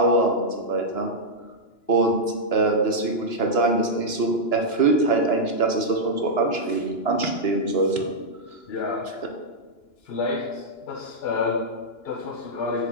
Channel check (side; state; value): right; late; 2.9 ms